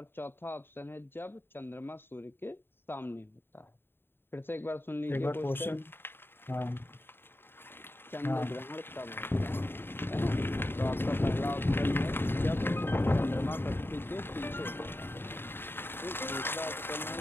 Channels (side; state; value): right; late; 0.10 ms